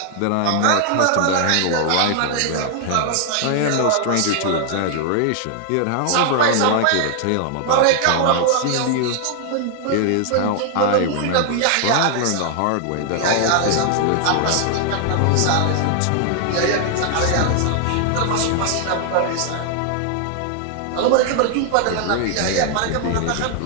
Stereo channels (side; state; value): both; different; correlation 0.00